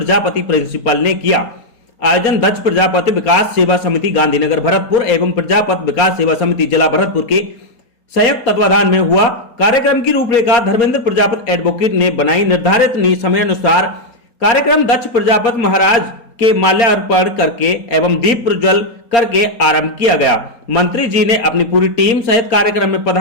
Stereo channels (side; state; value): right; late; 4.3 ms